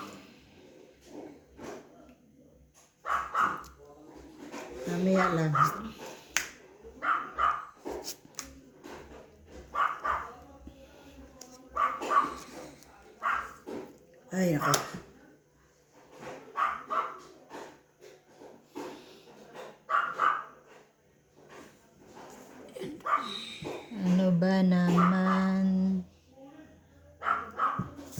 Mamaya lang. Ay, ako. Ano ba naman?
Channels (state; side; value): identical; both; correlation 1.00